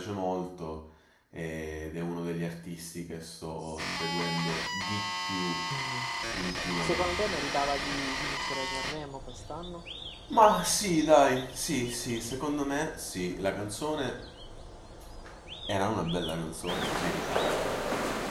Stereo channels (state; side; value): identical; both; correlation 1.00